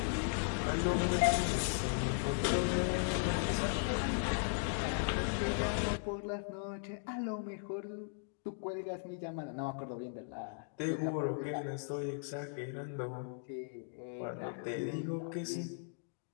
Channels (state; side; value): silent; right; digital silence